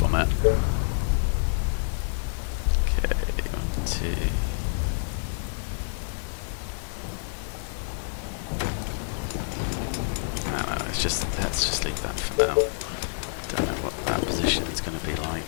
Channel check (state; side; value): silent; right; 56 dB below the other